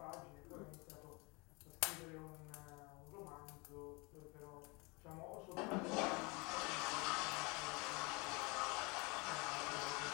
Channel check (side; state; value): right; quieter; 28.1 dB